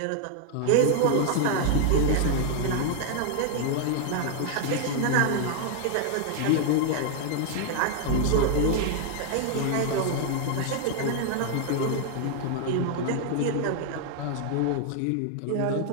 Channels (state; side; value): different; both; correlation 0.00